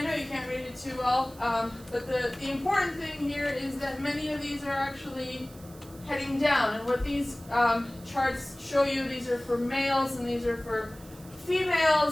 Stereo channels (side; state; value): right; noise; hiss, 22 dB below the sound